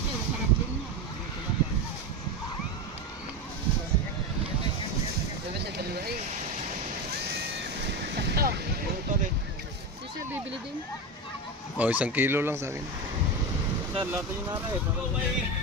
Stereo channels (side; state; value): both; normal; correlation 0.19